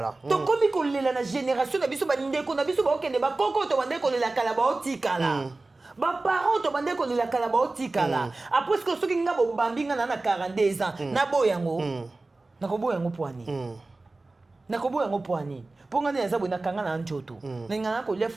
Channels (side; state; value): left; quieter; 3.2 dB